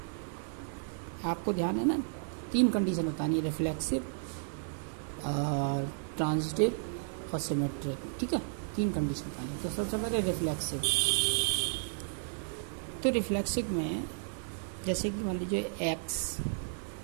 आपको ध्यान है ना, तीन कंडीशन बतानी है, रिफ्लेक्सिव, ट्रांजिटिव और सिमेट्रिक। ठीक है, तीन कंडीशन बतानी है। तो सबसे पहले रिफ्लेक्सिव। तो रिफ्लेक्सिव में जैसे कि मान लीजिए X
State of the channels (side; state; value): left; silent; 56 dB below the other